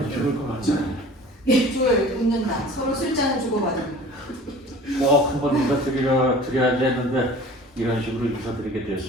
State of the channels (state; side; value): normal; both; correlation 0.44